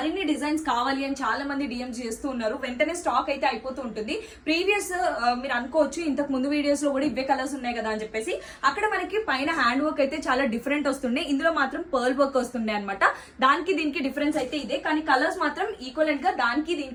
డిజైన్స్ కావాలి అని చాలా మంది డిఎం చేస్తూ ఉన్నారు. వెంటనే స్టాక్ అయితే అయిపోతూ ఉంటుంది. ప్రీవియస్ మీరు అనుకోవచ్చు ఇంతకు ముందు వీడియోస్ లో కూడా ఇవే కలర్స్ ఉన్నాయి కదా అని చెప్పేసి. అక్కడ మనకి పైన హ్యాండ్ వర్క్ అయితే చాలా డిఫరెంట్ వస్తుండే, ఇందులో మాత్రం పర్ల్ వర్క్ వస్తుండే అనమాట. దానికి దీనికి డిఫరెన్స్ అయితే ఇదే, కానీ కలర్స్ మాత్రం ఈక్వలెంట్ గా దానికి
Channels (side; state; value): both; identical; correlation 1.00